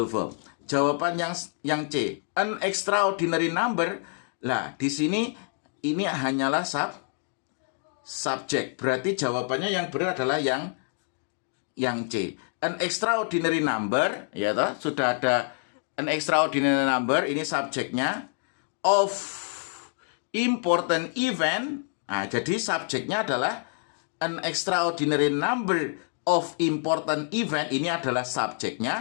verb. Jawaban yang C, an extraordinary number. Lah, di sini ini hanyalah subjek. Berarti jawabannya yang benar adalah yang C. An extraordinary number, ya toh, sudah ada an extraordinary number, ini subjeknya. Of important event. Nah, jadi subjeknya adalah an extraordinary number of important event. Ini adalah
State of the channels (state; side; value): silent; right; 59 dB below the other